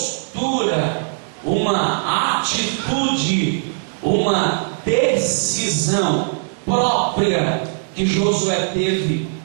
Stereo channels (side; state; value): left; silent; digital silence